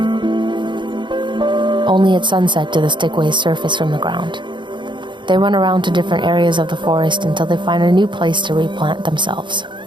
Only at sunset do the Stickweis surface from the ground. They run around to different areas of the forest until they find a new place to replant themselves.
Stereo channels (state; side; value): late; left; 0.23 ms